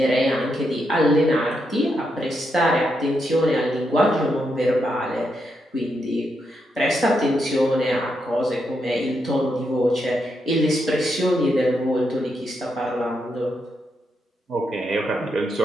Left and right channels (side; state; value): both; normal; correlation 0.82